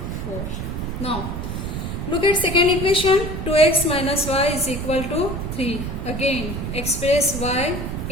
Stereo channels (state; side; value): noise; right; rumble, 5 dB below the sound